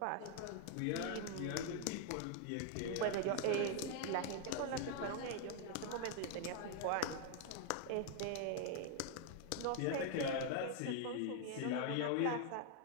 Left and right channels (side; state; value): both; different; correlation 0.00